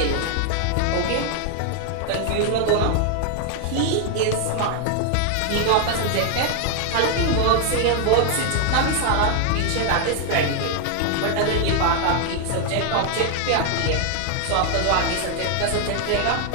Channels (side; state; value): both; different; correlation 0.00